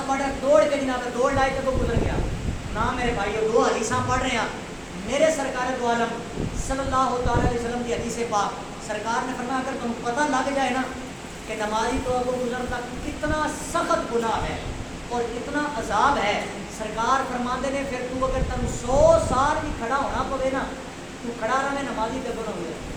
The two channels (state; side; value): identical; both; correlation 1.00